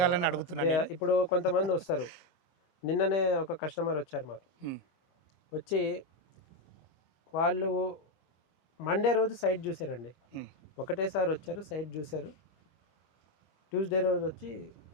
అడుగుతున్నాను నేను. ఇప్పుడు కొంతమంది వస్తారు. నిన్ననే ఒక కస్టమర్ వచ్చారు మాకు. హ్మ్. వచ్చి వాళ్ళు మండే రోజు సైట్ చూసారండి. హ్మ్. ఒకటేసారి వచ్చారు, సైట్ చూశారు. ట్యూస్డే రోజు వచ్చి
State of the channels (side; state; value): right; late; 24 ms